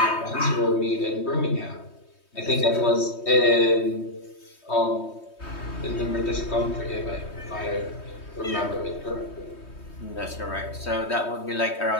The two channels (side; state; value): right; late; 3.2 ms